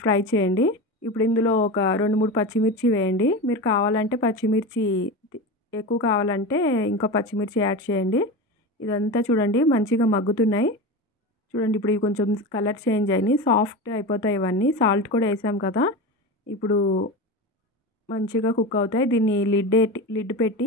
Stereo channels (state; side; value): normal; both; correlation 0.25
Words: ఫ్రై చేయండి. ఇప్పుడు ఇందులో ఒక 2-3 పచ్చిమిర్చి వేయండి. మీరు కావాలంటే పచ్చిమిర్చి ఎక్కువ కావాలంటే ఇంకా పచ్చిమిర్చి యాడ్ చేయండి. ఇదంతా చూడండి మంచిగా మగ్గుతున్నాయి. చూడండి ఇప్పుడు ఇవి కొంచెం కలర్ చేంజ్ అయినాయి, సాఫ్ట్ అయిపోతాయి ఇవన్నీ. సాల్ట్ కూడా వేసాం కదా, ఇప్పుడు మంచిగా కుక్ అవుతాయి. దీన్ని లిడ్ పెట్టి